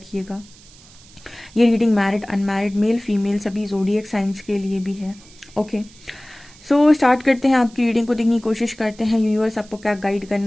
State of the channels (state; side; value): noise; right; hiss, 24 dB below the sound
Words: ये reading married, unmarried, male female सभी ज़ोडिएक साइंस के लिए भी है। ओके, सो स्टार्ट करते हैं। आपकी रीडिंग को देखने की कोशिश करते हैं। यूनिवर्स आपको क्या गाइड